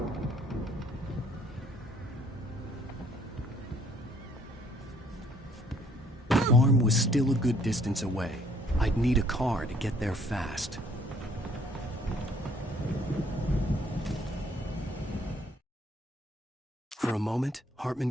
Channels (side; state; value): both; normal; correlation 0.62